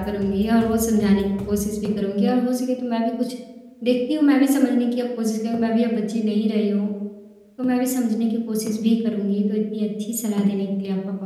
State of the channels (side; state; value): both; identical; correlation 1.00